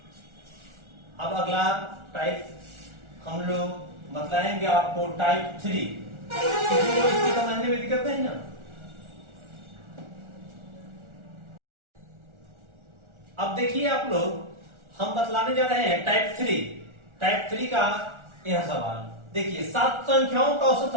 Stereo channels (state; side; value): late; left; 1.4 ms